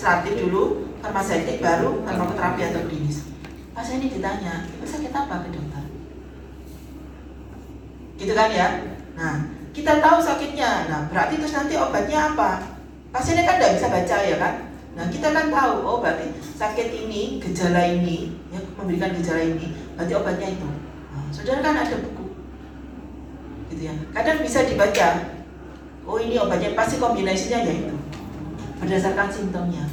dulu, farmaseutik baru farmakoterapi atau klinis. Pasien ini ditanya, "Ibu sakit apa ke dokter?" Gitu kan ya? Nah, kita tahu sakitnya. Nah, berarti terus nanti obatnya apa? pasiennya kan nggak bisa baca ya kan. Nah kita kan tahu, oh berarti sakit ini, gejala ini, ya, memberikan gejala ini, berarti obatnya itu. Nah, saudara kan ada buku, gitu ya. Kadang bisa dibaca, oh ini obatnya pasti kombinasinya ya itu, berdasarkan simptomnya.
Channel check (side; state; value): both; identical; correlation 1.00